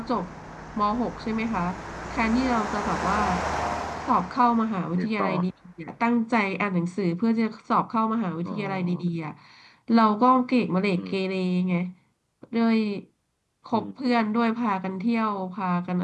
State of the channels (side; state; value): both; identical; correlation 1.00